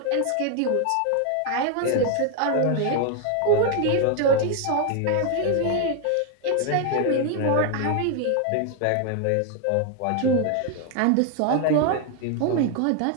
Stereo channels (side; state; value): both; different; correlation 0.01